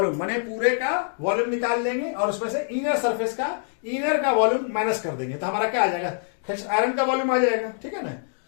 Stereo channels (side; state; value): right; silent; digital silence